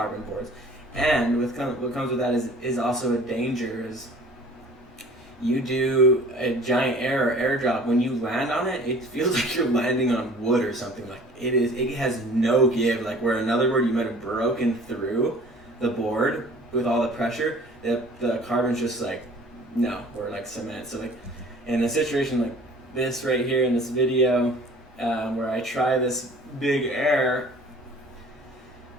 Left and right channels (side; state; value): both; normal; correlation 0.48